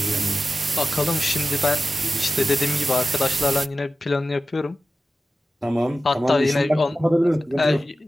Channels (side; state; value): both; normal; correlation 0.94